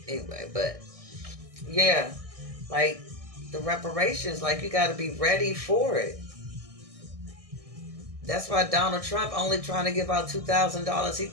Anyway, but yeah, like the reparations, like you got to be ready for it. That's why Donald Trump only trying to give out $2,000. He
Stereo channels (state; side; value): late; left; 1.6 ms